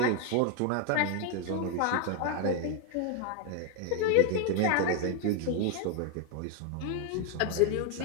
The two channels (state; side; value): different; both; correlation 0.01